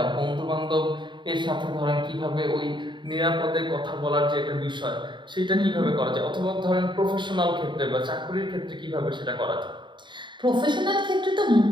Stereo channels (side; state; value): left; late; 0.23 ms